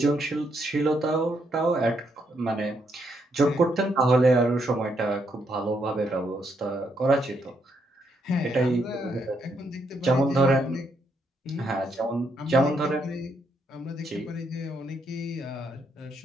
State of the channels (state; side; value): normal; both; correlation 0.76